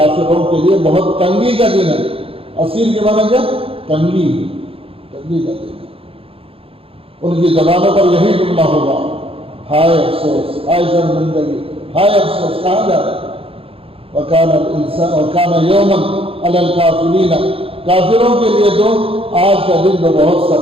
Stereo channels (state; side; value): late; left; 0.27 ms